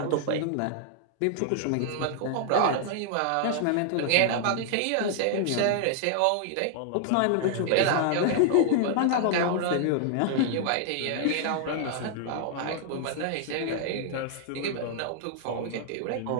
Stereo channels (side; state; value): both; different; correlation -0.01